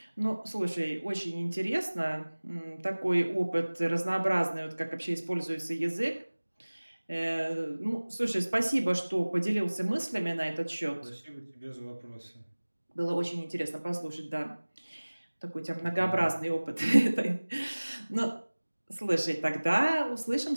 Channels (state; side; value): inverted; both; correlation -1.00